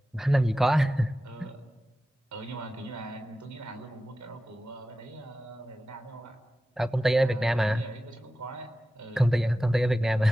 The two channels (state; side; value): normal; both; correlation 0.94